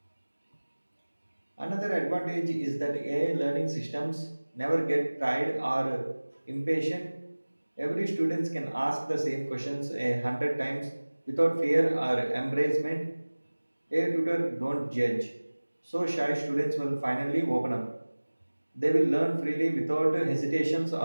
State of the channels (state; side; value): inverted; both; correlation -1.00